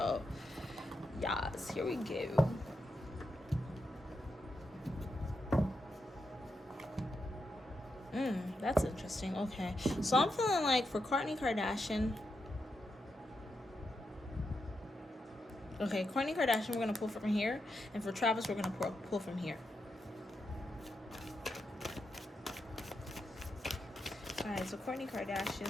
yes, here we go. That's interesting. Okay, so I'm feeling like for Kourtney Kardashian, Kourtney Kardashian, we're gonna pull from here, and for Travis, we're gonna pull from here. All right, so Kourtney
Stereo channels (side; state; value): both; normal; correlation 0.85